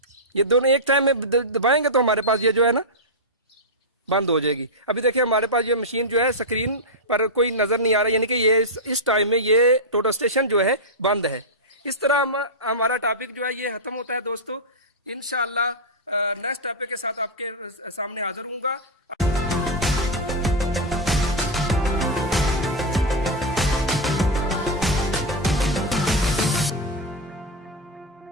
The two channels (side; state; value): both; normal; correlation -0.02